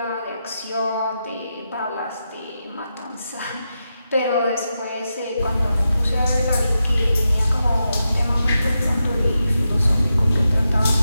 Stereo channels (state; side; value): inverted; both; correlation -0.88